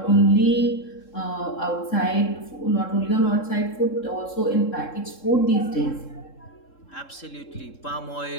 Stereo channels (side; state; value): right; late; 3.7 ms